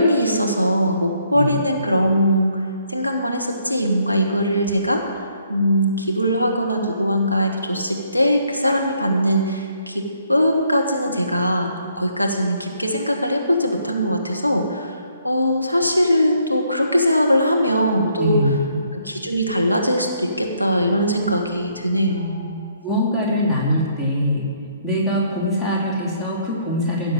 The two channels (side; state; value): both; inverted; correlation -0.69